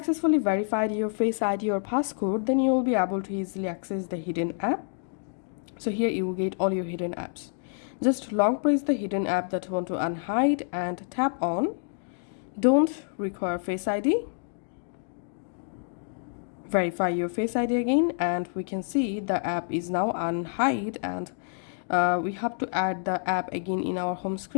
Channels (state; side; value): silent; right; digital silence